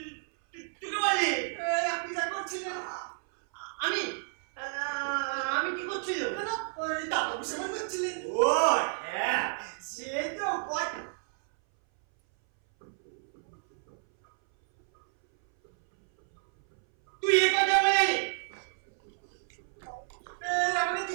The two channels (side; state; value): left; silent; 57 dB below the other